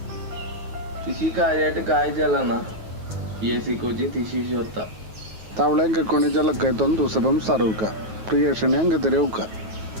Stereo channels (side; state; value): left; late; 9.3 ms